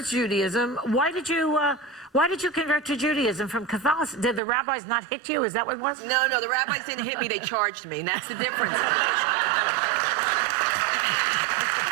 to Judaism. Why did you convert to Judaism from Catholicism? Did the rabbis not hit you? Is that what it was? No, the rabbis didn't hit me. They charged me, and that's the difference.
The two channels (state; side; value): drops out; left; at 4.4 s